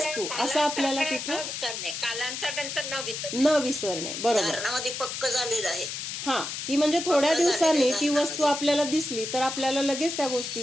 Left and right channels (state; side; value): noise; left; hiss, 6 dB below the sound